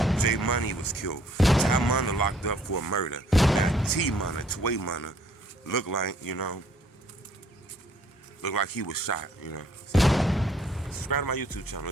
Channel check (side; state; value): both; normal; correlation 0.62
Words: J Money was killed. Tway Munna locked up for a murder. Now Tway Munna, look like, you know, look like he was shot, you know. So, subscribe to my YouTube channel,